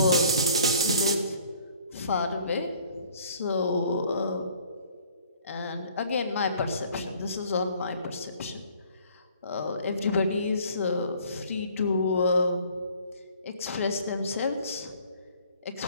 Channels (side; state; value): both; inverted; correlation -0.56